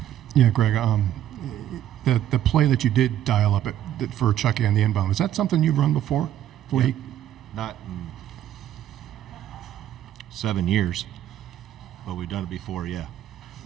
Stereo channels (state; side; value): quieter; left; 11.6 dB